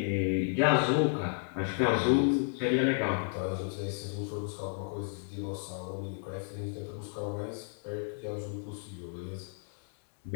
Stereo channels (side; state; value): right; silent; 56 dB below the other